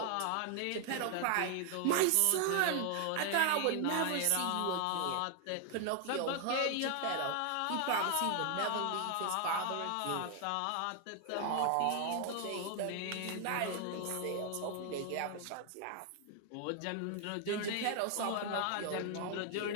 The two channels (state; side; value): different; both; correlation 0.00